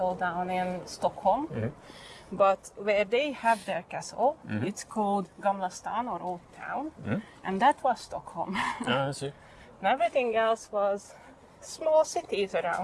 down in Stockholm. But where they have their castle, it's called Gamla Stan or Old Town, and that was Stockholm. I see. And everything else was small cities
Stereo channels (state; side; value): identical; both; correlation 1.00